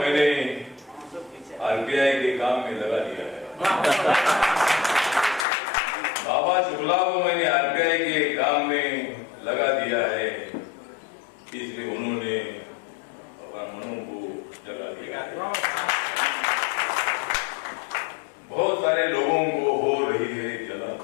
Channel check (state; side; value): drops out; right; at 5.5 s